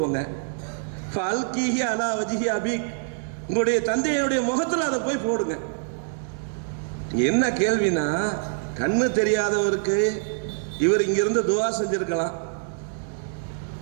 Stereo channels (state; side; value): silent; left; 62 dB below the other